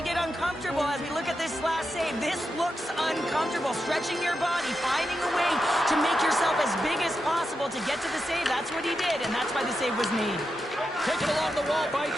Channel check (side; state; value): both; normal; correlation 0.87